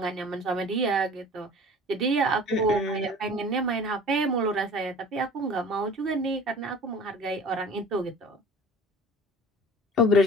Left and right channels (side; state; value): both; normal; correlation 0.43